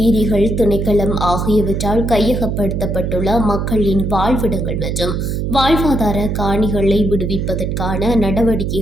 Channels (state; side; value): noise; right; hum, 1 dB below the sound